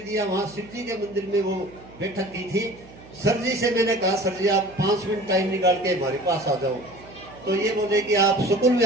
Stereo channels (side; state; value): right; noise; hum, 21 dB below the sound